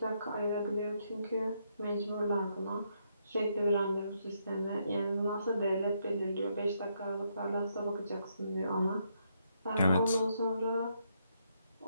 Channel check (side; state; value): both; inverted; correlation -0.76